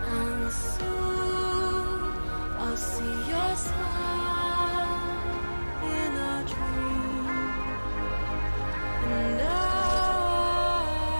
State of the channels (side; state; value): both; inverted; correlation -1.00